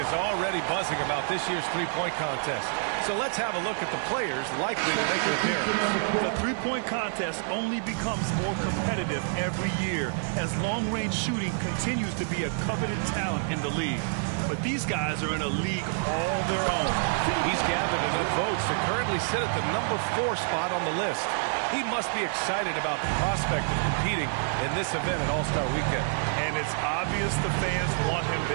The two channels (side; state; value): left; silent; digital silence